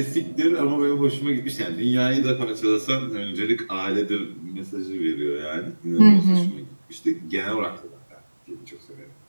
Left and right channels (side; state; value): both; inverted; correlation -1.00